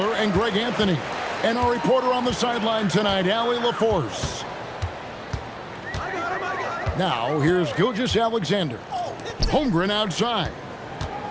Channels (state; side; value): identical; both; correlation 1.00